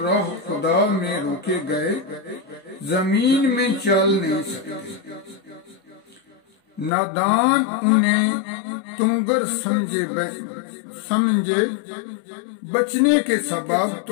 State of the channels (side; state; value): right; drops out; at 6.9 s